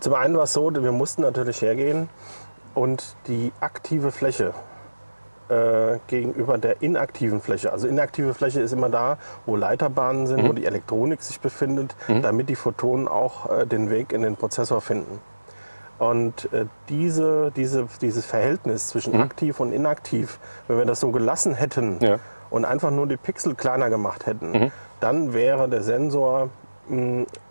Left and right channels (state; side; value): inverted; both; correlation -1.00